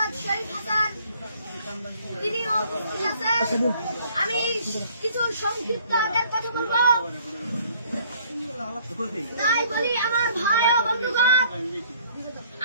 শরীফ হাসান, তিনিও উপস্থিত আছেন। আমি কিছু সংক্ষিপ্ত আগের কথা বলবো, তাই বলি আমার ভাই ও বন্ধুগণ,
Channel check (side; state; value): both; inverted; correlation -0.59